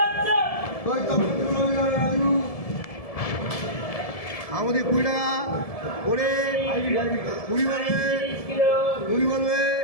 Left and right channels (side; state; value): right; late; 1.7 ms